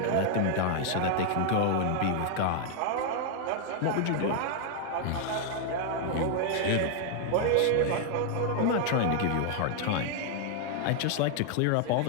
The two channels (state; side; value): different; both; correlation 0.00